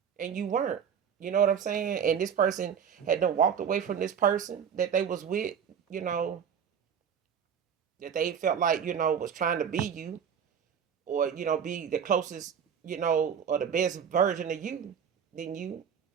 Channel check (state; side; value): quieter; left; 7.7 dB